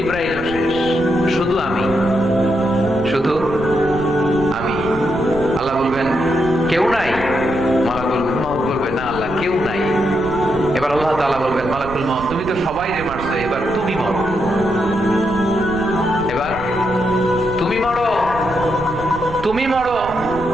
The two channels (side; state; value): right; noise; rumble, 13 dB below the sound